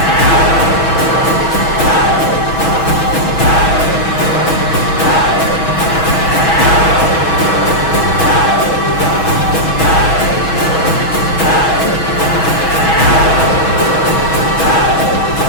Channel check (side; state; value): right; late; 6.2 ms